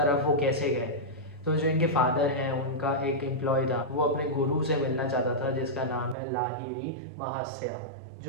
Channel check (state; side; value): drops out; left; at 6.2 s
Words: वो कैसे गए? तो जो इनके फादर हैं, उनका एक एम्प्लॉय था, वो अपने गुरु से मिलना चाहता था जिसका नाम है लाहिरी महास्या,